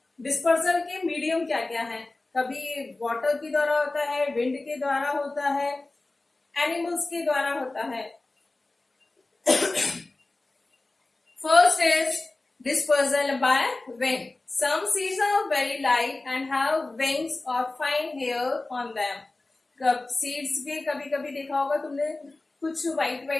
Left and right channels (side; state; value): right; quieter; 3.1 dB